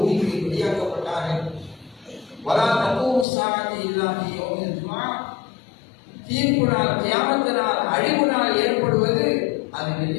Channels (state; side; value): drops out; right; at 3.2 s